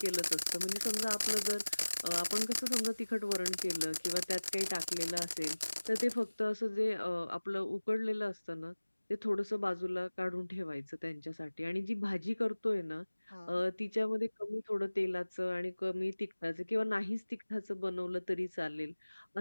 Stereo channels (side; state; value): both; inverted; correlation -1.00